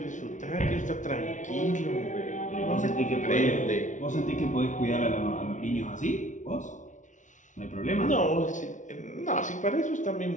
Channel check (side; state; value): right; late; 0.37 ms